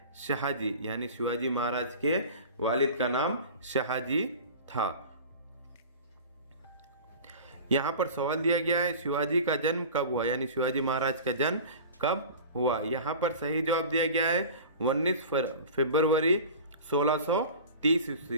शाहजी। यानी शिवाजी महाराज के वालिद का नाम शाहजी था। यहाँ पर सवाल दिया गया है, शिवाजी का जन्म कब हुआ? यानी शिवाजी महाराज का जन्म कब हुआ? यहाँ पर सही जवाब दिया गया है 19 फरवरी 1630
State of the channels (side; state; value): both; inverted; correlation -0.37